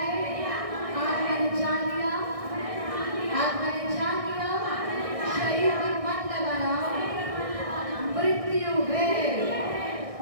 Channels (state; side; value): late; left; 1.6 ms